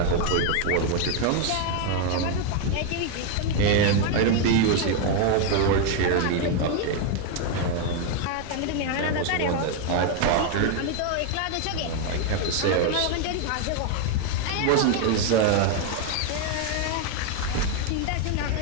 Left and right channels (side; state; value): both; different; correlation 0.01